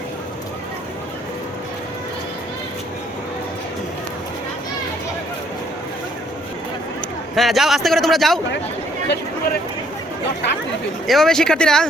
হ্যাঁ যাও, আস্তে করে তোমরা যাও। এভাবে শিক্ষার্থীরা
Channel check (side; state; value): both; normal; correlation 0.65